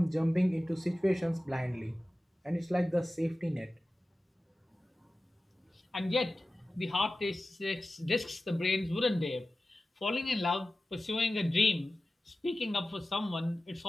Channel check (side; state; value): both; normal; correlation 0.95